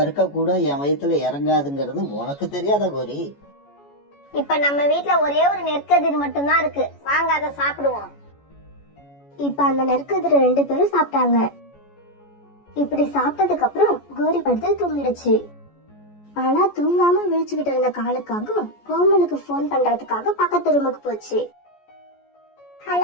கூட என் வயித்துல இறங்காதுங்கிறது உனக்கு தெரியாதா கோரி? இப்ப நம்ம வீட்ல ஒரே ஒரு நெற்கதிர் மட்டும்தான் இருக்கு. வாங்க அதை சாப்பிடுவோம். இப்ப அந்த நெற்கதிர 2 பேரும் சாப்பிட்டாங்க. இப்படி சாப்பிட்டதுக்கு அப்புறம் கோரி படுத்து தூங்கிடுச்சு. ஆனா தூங்காம விழிச்சுக்கிட்டு இருந்த காலுக்காக கோமலுக்கு போன் பண்றதுக்காக பக்கத்து ரூமுக்கு போச்சு.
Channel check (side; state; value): right; late; 14 ms